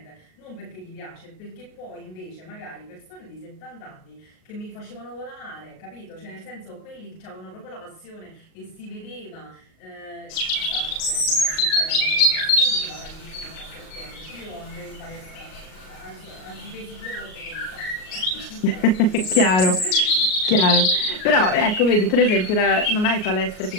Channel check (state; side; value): late; right; 38 ms